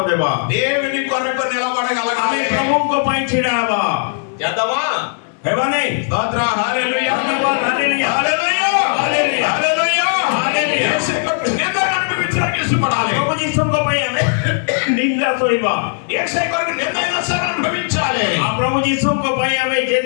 ଦେବା। దేవుని కొరకు ଆମେ నిలబడగలగాలి. ପ୍ରଭୁଙ୍କ ପାଇଁ ଛିଡା ହେବା, చేద్దామా? ହେବା ନାହିଁ? స్తోత్ర, హల్లెలూయా, ଧନ୍ୟବାଦ, ହାଲେଲୁୟା, హల్లెలూయా, ହାଲେଲୁୟା, హల్లెలూయా. ହାଲେଲୁୟା। యేసు కొరకు నిందను అనుభవించడానికి ఇష్టపడాలి. ପ୍ରଭୁ ଯୀଶୁଙ୍କ ପାଇଁ ଆମେ ନିନ୍ଦା ସହିବା, యేసు కొరకు నిందైనా సరే అనుభవించాలి. ଆଉ ପ୍ରଭୁ ଯୀଶୁଙ୍କ ପାଇଁ ଆମେ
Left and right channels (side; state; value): right; silent; digital silence